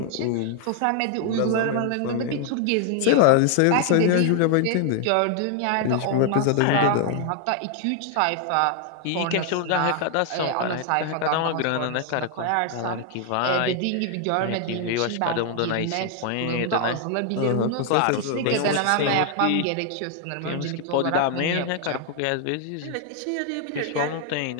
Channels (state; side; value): different; both; correlation 0.00